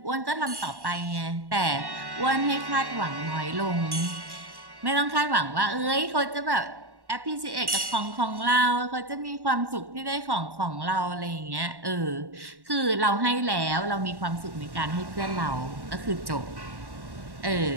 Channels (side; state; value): left; late; 1.1 ms